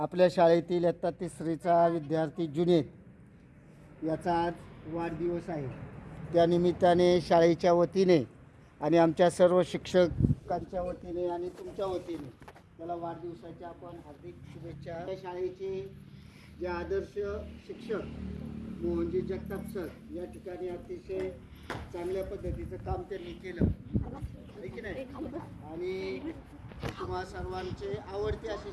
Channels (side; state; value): both; identical; correlation 1.00